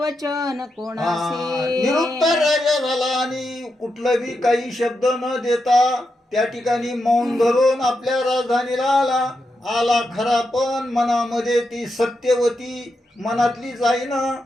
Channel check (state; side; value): normal; both; correlation 0.86